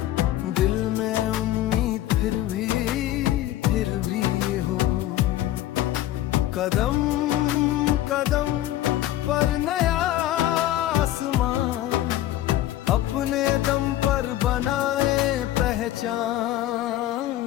दिल में उम्मीद फिर भी हो। कदम कदम पर नया आसमां, अपने दम पर बनाए पहचान।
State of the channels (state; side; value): quieter; right; 14.0 dB